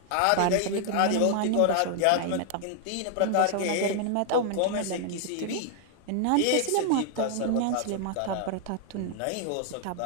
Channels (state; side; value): different; both; correlation 0.00